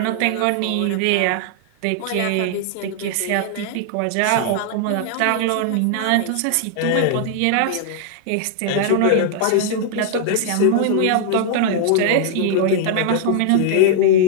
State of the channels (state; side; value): different; both; correlation -0.01